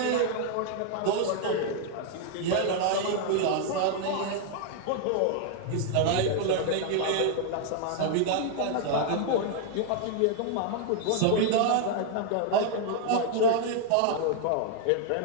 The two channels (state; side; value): different; both; correlation 0.00